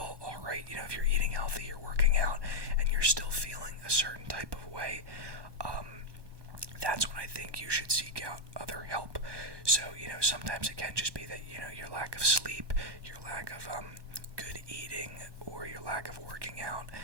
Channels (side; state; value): left; late; 1.2 ms